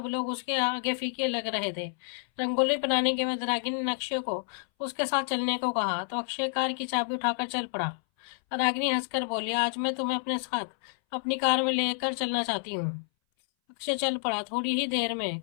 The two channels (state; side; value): silent; right; 58 dB below the other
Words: लोग उसके आगे फीके लग रहे थे। रंगोली बनाने के बाद रागिनी ने अक्षय को उसके साथ चलने को कहा, तो अक्षय कार की चाबी उठाकर चल पड़ा। रागिनी हंसकर बोली, आज मैं तुम्हें अपने साथ अपनी कार में लेकर चलना चाहती हूँ। अक्षय चल पड़ा। थोड़ी ही देर में